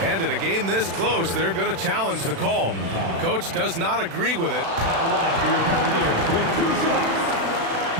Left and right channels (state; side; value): late; left; 36 ms